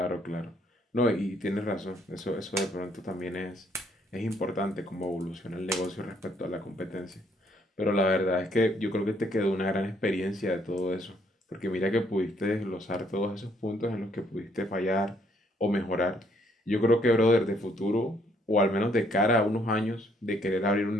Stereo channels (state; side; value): normal; both; correlation 0.68